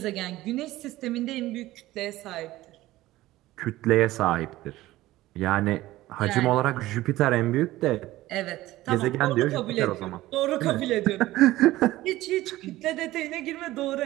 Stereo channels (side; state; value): left; quieter; 16.7 dB